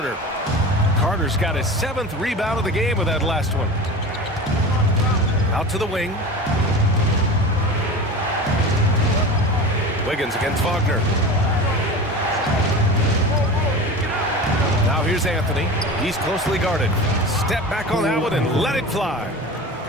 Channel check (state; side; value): normal; both; correlation 0.32